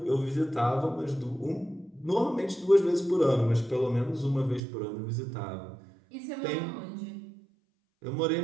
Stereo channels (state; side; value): drops out; left; at 4.6 s